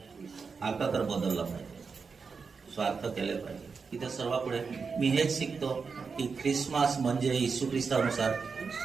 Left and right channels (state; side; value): quieter; left; 5.2 dB